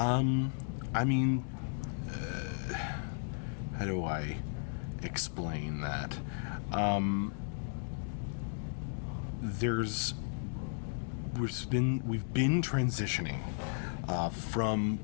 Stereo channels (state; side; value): silent; right; digital silence